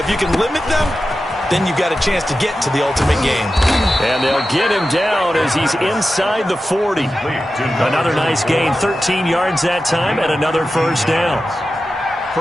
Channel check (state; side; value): normal; both; correlation 0.92